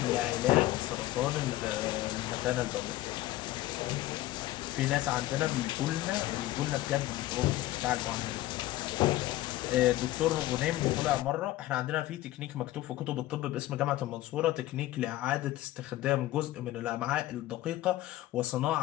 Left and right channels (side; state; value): right; quieter; 16.0 dB